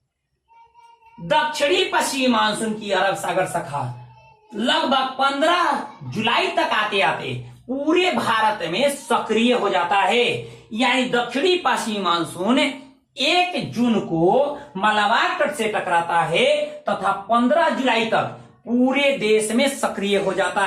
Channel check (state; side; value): identical; both; correlation 1.00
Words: दक्षिणी पश्चिमी मानसून की अरब सागर शाखा लगभग 15 जुलाई तक आते आते पूरे भारत में सक्रिय हो जाता है। यानी दक्षिणी पश्चिमी मानसून 1 जून को मलाबार तट से टकराता है तथा 15 जुलाई तक पूरे देश में सक्रिय हो जाता